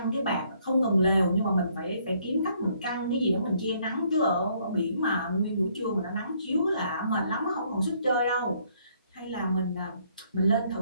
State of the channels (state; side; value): inverted; both; correlation -0.67